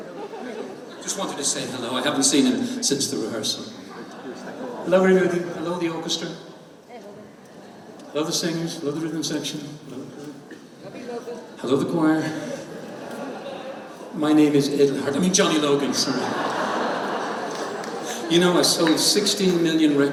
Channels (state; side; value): identical; both; correlation 1.00